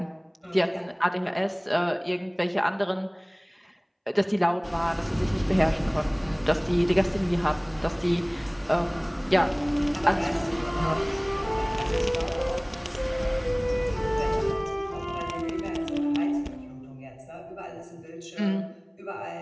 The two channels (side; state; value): both; identical; correlation 1.00